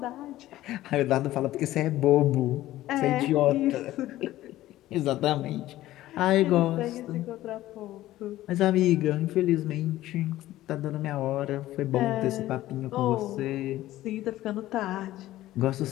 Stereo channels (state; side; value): quieter; right; 15.2 dB